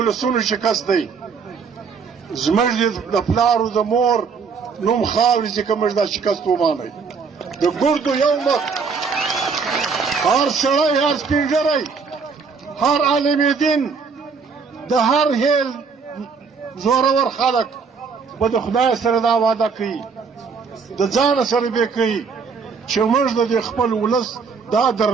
شکست دی زموږ د پلارو د مور نوم خاورې چې که موږ دا شکست ومانئ د ګردو یو مخ هر سړی هر سپین ږیری هر عالم دین د هر هیل زورور خلک به د خدای سره دا وعده کوي د ځانه سره به کوي چې موږ د خپل ولس دا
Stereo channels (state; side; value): quieter; left; 5.4 dB